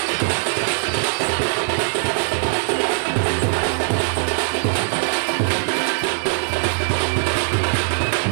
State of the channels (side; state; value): left; silent; digital silence